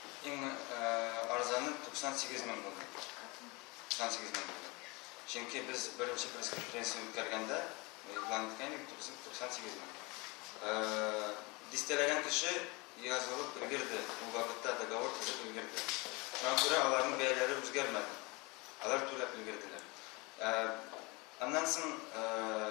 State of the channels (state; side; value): quieter; right; 26.1 dB